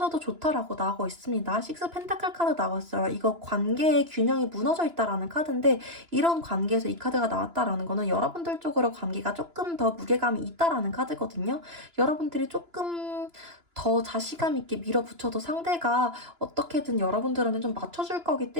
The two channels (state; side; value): late; left; 2.9 ms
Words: 좋다라고 나오고 있습니다. 식스 펜타클 카드 나왔어요. 이거 관계의 균형이 무너져 있다라는 카드인데, 이런 관계에서 이 카드가 나왔다라는 거는 여러분들 쪽으로 관계가 조금 더 무게감이 있다라는 카드거든요. 여러분들이 조금 더 자신감 있게 밀어붙여도 상대가 어떻게든 여러분들한테 좀 맞춰줄 거기